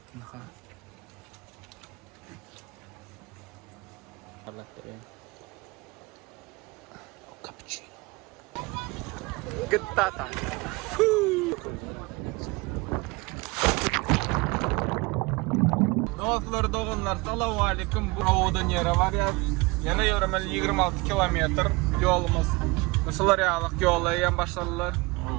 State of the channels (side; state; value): left; quieter; 25.0 dB